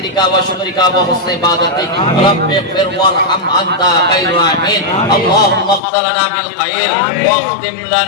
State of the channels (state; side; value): drops out; right; at 5.8 s